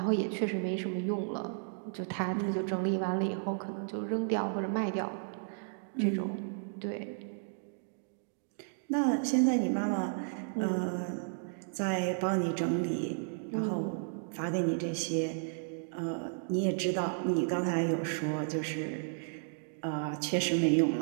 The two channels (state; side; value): silent; left; digital silence